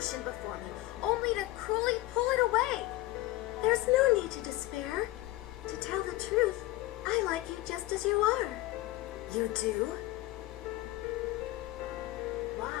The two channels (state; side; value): quieter; right; 17.9 dB